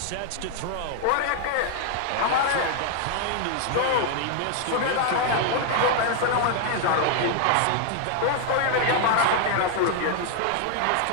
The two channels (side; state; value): both; different; correlation 0.00